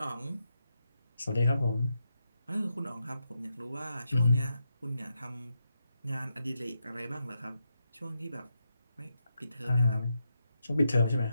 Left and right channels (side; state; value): both; inverted; correlation -0.85